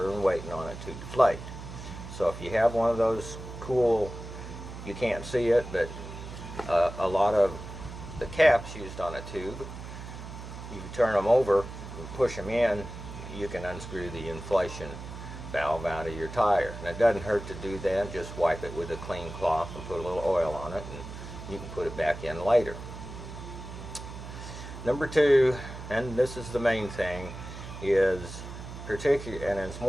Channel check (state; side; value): noise; right; hum, 11 dB below the sound